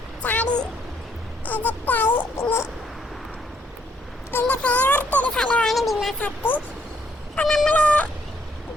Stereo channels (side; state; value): both; normal; correlation 0.70